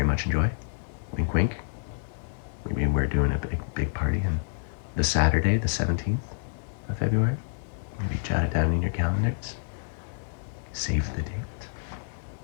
much enjoy. Wink, wink. Maybe we're doing a big party on the Saturday, the 17th of February. Maybe jot it down in your calendars. Save the date.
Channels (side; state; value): right; silent; digital silence